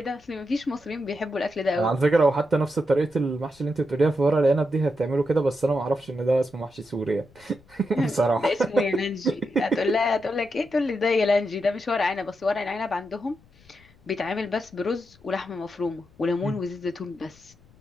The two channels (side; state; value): left; noise; rumble, 28 dB below the sound